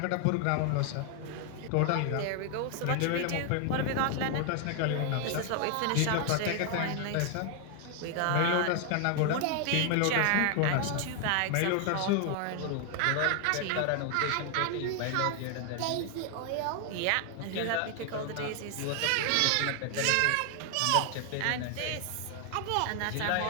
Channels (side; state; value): both; different; correlation 0.00